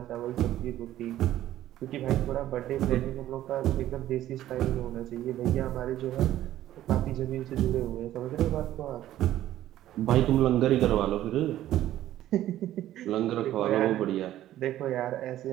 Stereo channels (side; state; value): left; quieter; 13.3 dB